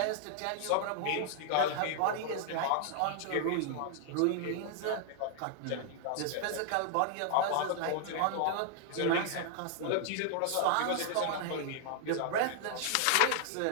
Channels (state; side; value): different; both; correlation 0.00